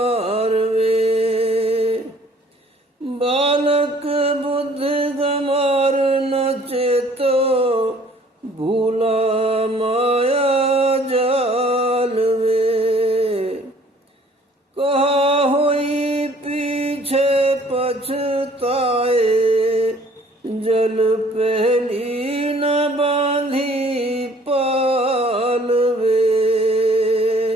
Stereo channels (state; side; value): normal; both; correlation 0.56